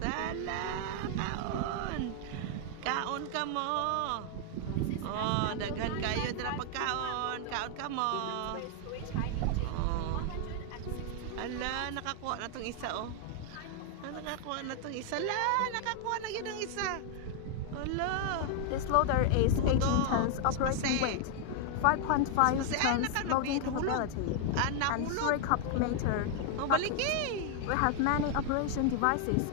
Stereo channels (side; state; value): both; different; correlation 0.00